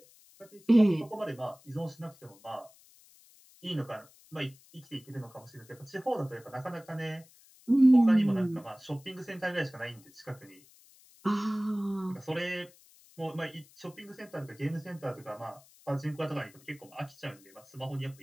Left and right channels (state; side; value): noise; left; hiss, 26 dB below the sound